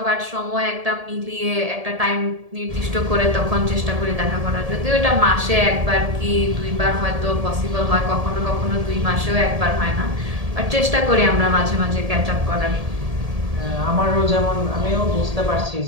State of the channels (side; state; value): left; late; 1.7 ms